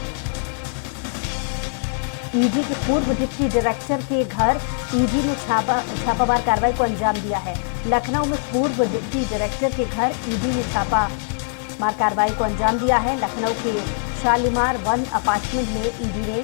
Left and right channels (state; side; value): silent; right; digital silence